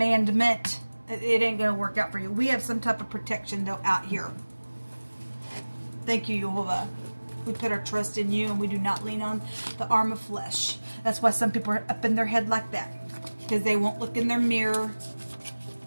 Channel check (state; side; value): inverted; both; correlation -1.00